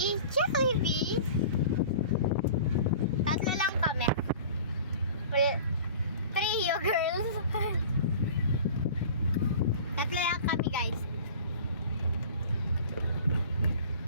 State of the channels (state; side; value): inverted; both; correlation -0.41